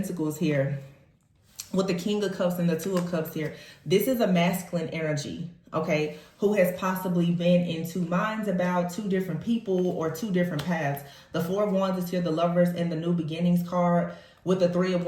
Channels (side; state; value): both; identical; correlation 1.00